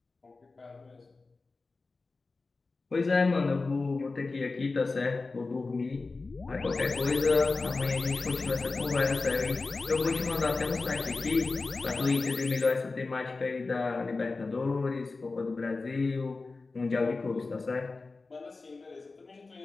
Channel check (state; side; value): quieter; right; 3.8 dB